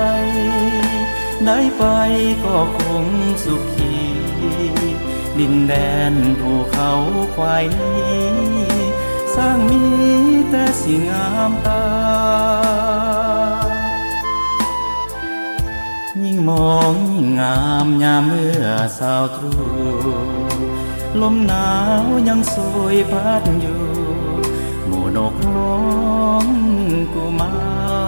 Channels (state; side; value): inverted; both; correlation -1.00